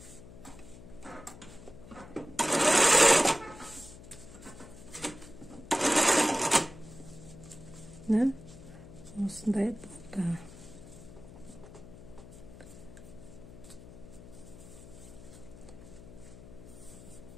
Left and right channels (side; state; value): left; noise; hum, 17 dB below the sound